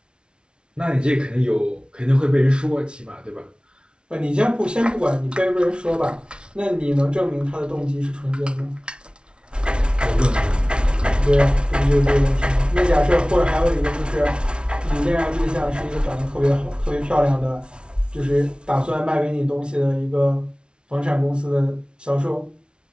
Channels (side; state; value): left; late; 0.056 ms